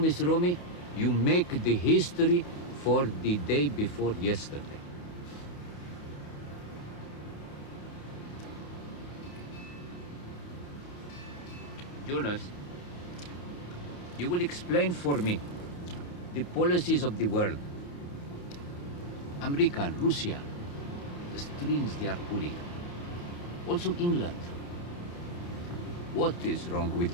Romy, you make the history for the day before yesterday. Jonas, you will explain for me the policies of the world. America and Russia, the strings they are pulling. Also England. What is wrong with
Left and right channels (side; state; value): right; late; 34 ms